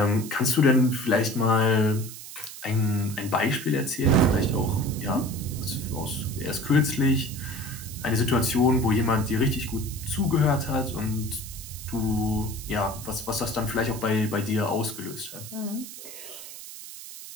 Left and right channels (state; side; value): noise; right; hiss, 13 dB below the sound